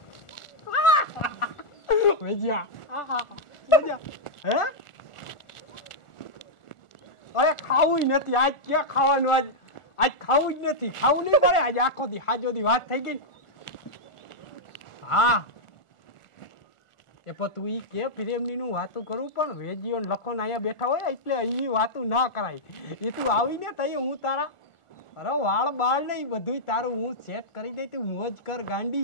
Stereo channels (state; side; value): late; right; 1.4 ms